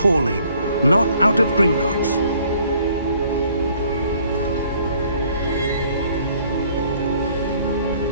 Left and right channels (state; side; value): inverted; both; correlation -0.61